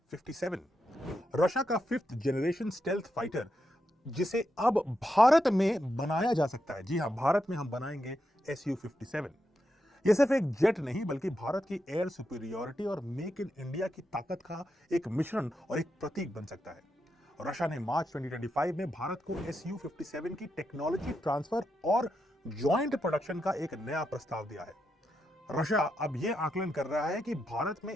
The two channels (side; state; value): both; normal; correlation 0.85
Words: 57। रशिया का 5th जनरेशन स्टेल्थ फाइटर, जिसे अब भारत में बनाया जा सकता है। जी हां, भारत में हम बनाएंगे Su-57। यह सिर्फ एक जेट नहीं बल्कि भारत की एयर सुपीरियरिटी और मेक इन इंडिया की ताकत का एक मिश्रण और एक प्रतीक बन सकता है। रशिया ने मार्च 2025 में भारत को Su-57 की टेक्नोलॉजी ट्रांसफर और ज्वाइंट प्रोडक्शन का एक नया प्रस्ताव दिया है। रशिया अब यह आकलन कर रहा है कि भारत में